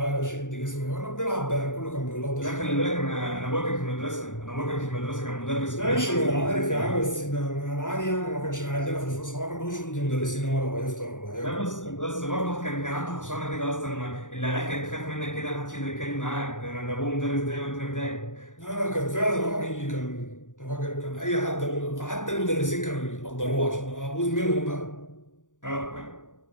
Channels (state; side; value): late; right; 0.87 ms